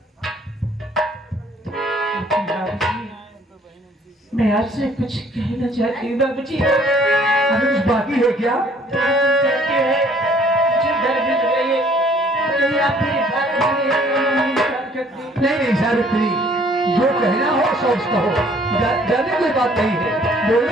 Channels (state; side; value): normal; both; correlation 0.59